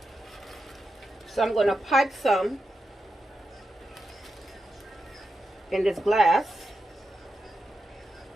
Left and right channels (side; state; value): both; normal; correlation 0.88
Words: So I'm going to pipe some in this glass.